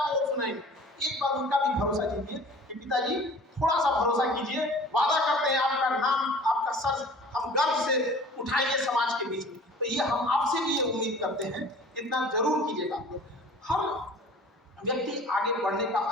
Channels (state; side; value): normal; both; correlation 0.46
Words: को सुनाएंगे। एक बार उनका भी भरोसा कीजिए कि पिताजी थोड़ा सा भरोसा कीजिए, वादा करते हैं आपका नाम, आपका सर हम गर्व से उठाएंगे समाज के बीच में। तो ये हम आपसे भी ये उम्मीद करते हैं, इतना जरूर कीजिएगा आप लोग। हर व्यक्ति आगे बढ़ने का